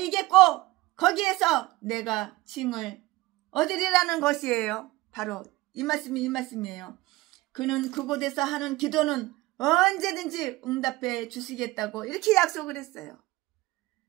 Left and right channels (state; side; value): quieter; left; 19.1 dB